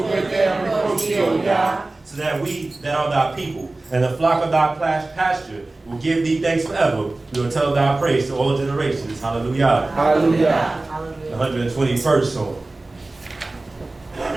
which they have reproached thee, O Yah. So that we that are thy people, and the flock of thy pasture, will give thee thanks forever. We will tell thy praise to all generations. Hallelujah. Hallelujah. The 121st Psalm.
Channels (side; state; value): left; quieter; 3.0 dB